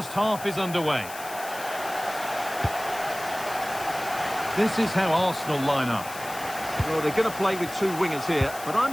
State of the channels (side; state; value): left; noise; hiss, 13 dB below the sound